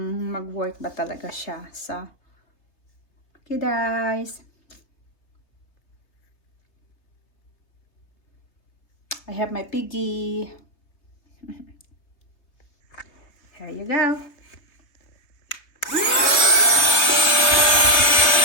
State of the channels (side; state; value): right; late; 3.3 ms